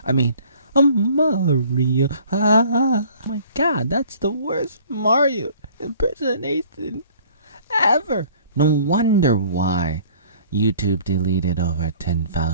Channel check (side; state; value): both; inverted; correlation -0.53